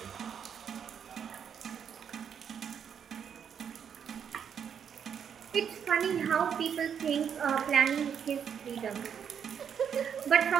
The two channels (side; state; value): left; quieter; 7.8 dB